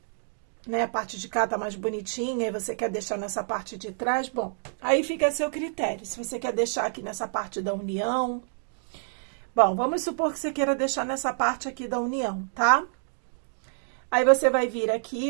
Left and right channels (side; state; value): left; silent; digital silence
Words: né, a parte de cá tá mais bonitinha e você quer deixar nessa parte de trás, bom, aí fica a seu critério. Se você quer deixar aqui nessa parte da união, bom, vamos supor que você queira deixar nessa parte aqui da união, tá? Aí você vai vir